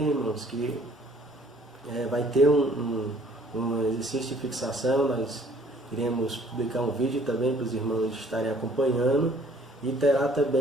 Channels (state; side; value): normal; both; correlation 0.58